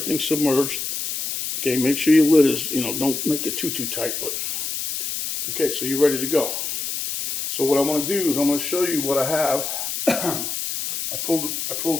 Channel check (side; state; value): left; noise; hiss, 3 dB below the sound